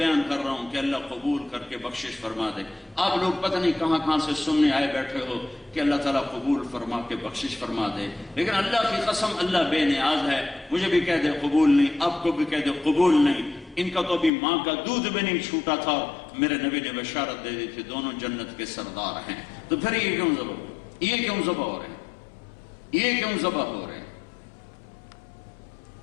کر رہا ہوں کہ اللہ قبول کر کے بخشش فرما دے۔ آپ لوگ پتہ نہیں کہاں سے سننے آئے بیٹھے ہو کہ اللہ تعالیٰ قبول فرما کے بخشش فرما دے، لیکن اللہ کی قسم اللہ بے نیاز ہے، مجھے بھی کہہ دے قبول نہیں، آپ کو بھی کہہ دے قبول نہیں۔ ان کا تو ابھی ماں کا دودھ بھی نہیں چھوٹا تھا، میرے نبی نے بشارت دے دی تھی دونوں جنت کے سردار ہیں۔ تو پھر یہ کیوں ذبح ہو رہے ہیں؟ یہ کیوں ذبح ہو رہے ہیں؟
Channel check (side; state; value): right; drops out; at 14.3 s